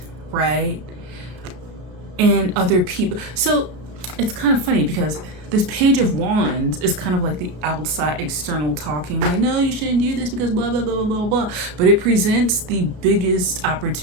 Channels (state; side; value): late; left; 33 ms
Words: right? And other people. So it's kind of funny because this Page of Wands is kind of like the outside external talking, like, no, you shouldn't do this because blah, blah, blah, blah, blah, blah. But it presents the biggest